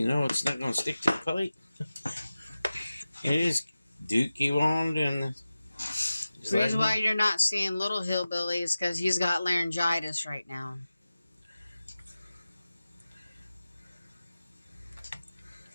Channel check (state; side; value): inverted; both; correlation -0.95